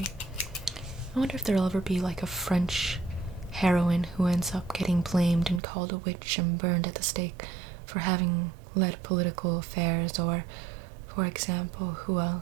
I wonder if there'll ever be like a French heroine who ends up getting blamed and called a witch and burned at the stake for having led political affairs, or, for example, who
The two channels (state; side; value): drops out; left; at 5.6 s